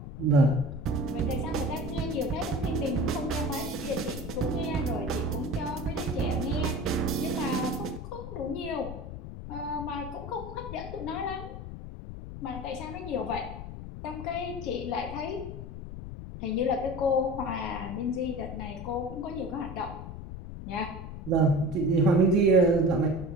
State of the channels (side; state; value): left; noise; rumble, 9 dB below the sound